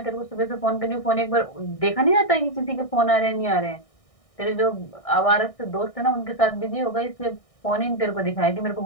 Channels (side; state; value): right; late; 1.6 ms